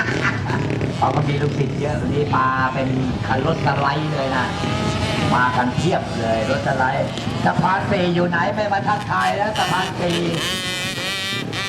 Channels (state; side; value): identical; both; correlation 1.00